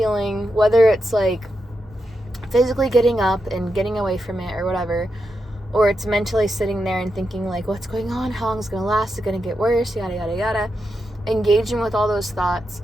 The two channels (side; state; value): both; normal; correlation 0.86